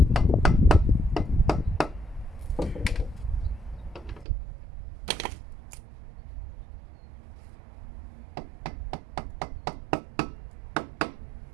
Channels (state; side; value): drops out; left; at 4.2 s